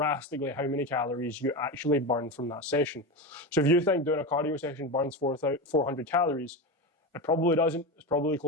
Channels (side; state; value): both; normal; correlation 0.20